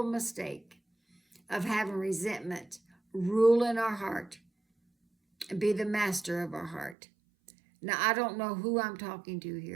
mistake of having resentment rule in our heart and be the master of our heart. Now, I don't know who I'm talking to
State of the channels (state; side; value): drops out; left; at 7.0 s